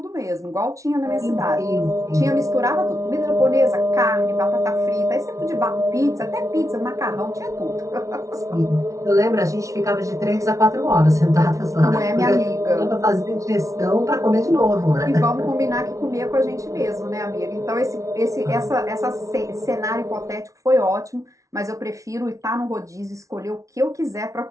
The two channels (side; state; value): left; late; 0.15 ms